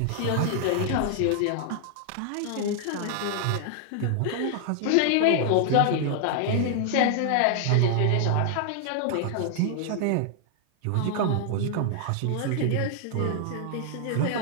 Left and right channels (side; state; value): both; different; correlation 0.00